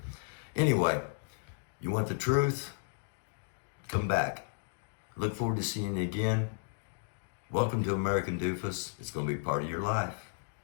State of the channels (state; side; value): silent; right; digital silence